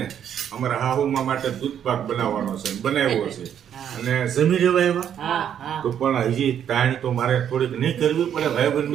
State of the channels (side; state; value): left; quieter; 9.3 dB